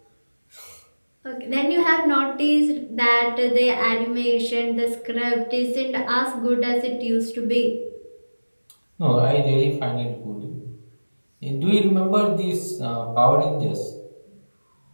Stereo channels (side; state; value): both; inverted; correlation -1.00